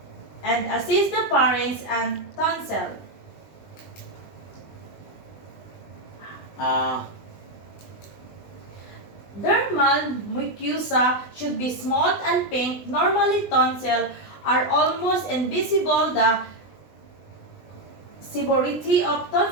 and assist the parents and tonsil. Dermal mucosa should be smooth and pink. Normally, tonsil are almost invisible. The severity of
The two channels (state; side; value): late; right; 20 ms